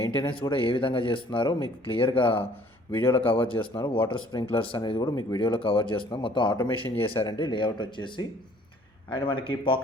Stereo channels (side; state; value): both; normal; correlation 0.57